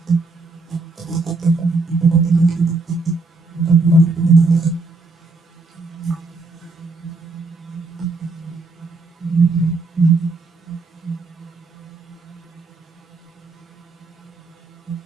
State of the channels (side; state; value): left; quieter; 3.5 dB